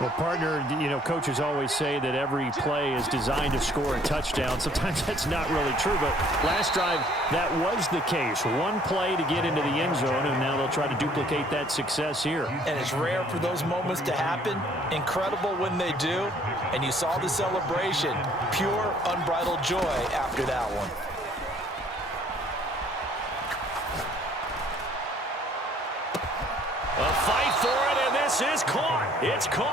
partner, you know, coaches always say that every play is designed to score a touchdown. Sometimes that's not really true, but last drive, that was the case. One play to get into the end zone, and now they'll try to duplicate that success here. And it's rare for those moments to happen. Incredible when they do. And you saw the celebration. Pure, unbridled joy after that one. A fight for it, and this is caught. It's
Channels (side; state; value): both; normal; correlation 0.59